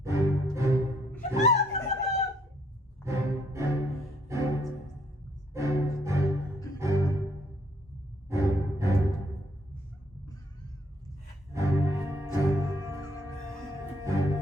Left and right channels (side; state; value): both; normal; correlation 0.68